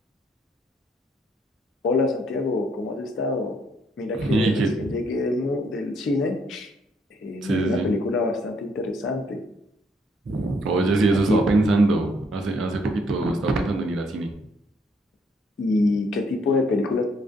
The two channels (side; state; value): both; normal; correlation 0.69